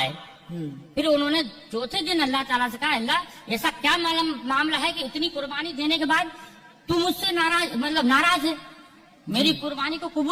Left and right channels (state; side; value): identical; both; correlation 1.00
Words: हम्म, फिर उन्होंने चौथे दिन अल्लाह ताला से कहा, अल्लाह ऐसा क्या मामला है कि इतनी कुर्बानी देने के बाद तू मुझसे नाराज है, मेरी कुर्बानी को